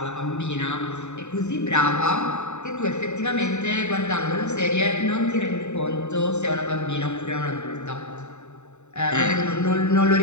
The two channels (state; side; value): late; right; 0.82 ms